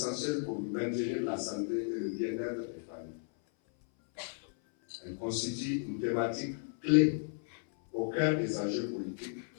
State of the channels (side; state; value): right; silent; 55 dB below the other